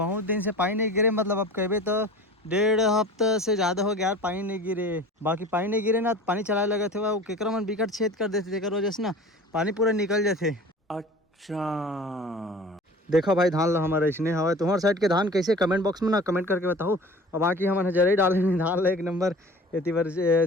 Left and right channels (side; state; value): both; normal; correlation 0.41